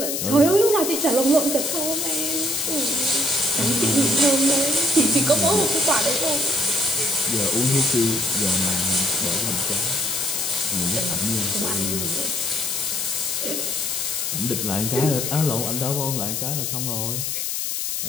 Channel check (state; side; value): noise; left; hiss, 2 dB below the sound